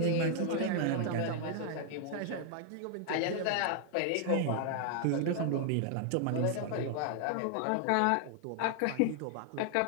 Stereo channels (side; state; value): both; different; correlation 0.00